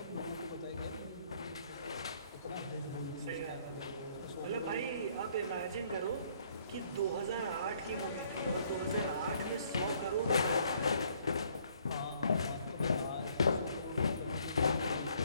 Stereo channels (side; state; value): both; inverted; correlation -0.64